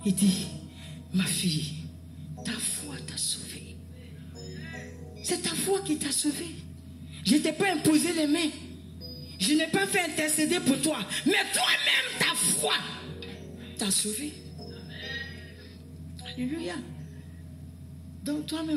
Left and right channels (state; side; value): identical; both; correlation 1.00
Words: il dit, ma fille, ta foi t'a sauvée. C'est ta foi qui t'a sauvée. Je ne t'ai pas imposé les mains. Je n'ai pas fait intercéder pour toi. Mais toi-même, ta foi t'a sauvé. Alléluia. Donc